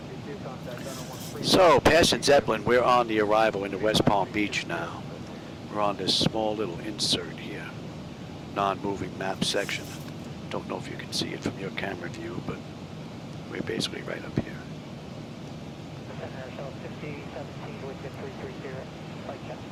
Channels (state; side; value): identical; both; correlation 1.00